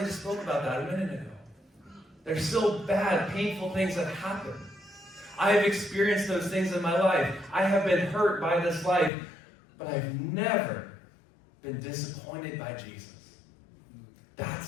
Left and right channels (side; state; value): right; drops out; at 9.1 s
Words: spoke about that a minute ago. There's still bad, painful things that happen. I have experienced those things in my life. I have been hurt by this life, but I've never been disappointed by Jesus.